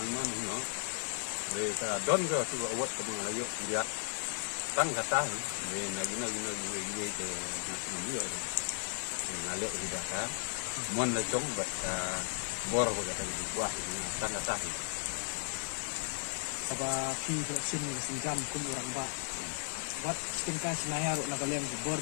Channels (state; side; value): silent; right; 54 dB below the other